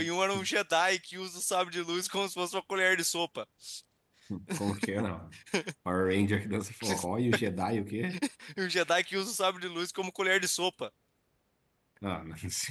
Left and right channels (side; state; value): both; identical; correlation 1.00